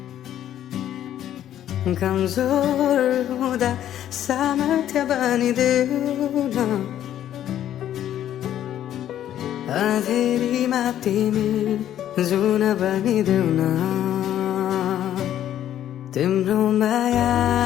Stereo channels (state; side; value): quieter; right; 11.3 dB